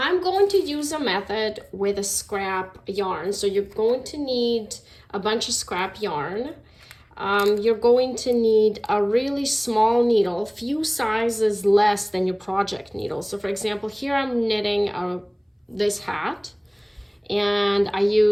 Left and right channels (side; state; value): both; identical; correlation 1.00